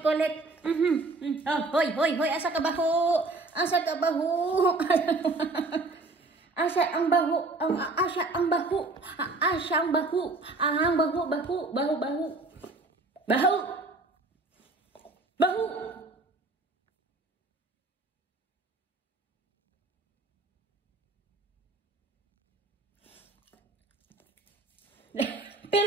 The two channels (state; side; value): quieter; left; 3.3 dB